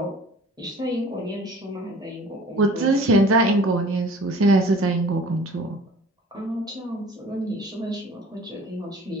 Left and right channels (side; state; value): both; normal; correlation 0.47